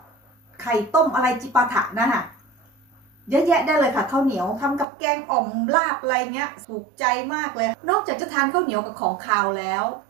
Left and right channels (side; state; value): left; drops out; at 4.9 s